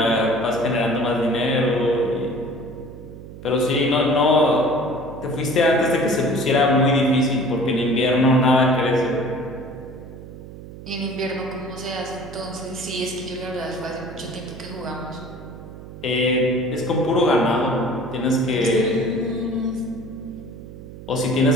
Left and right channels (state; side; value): noise; right; hum, 14 dB below the sound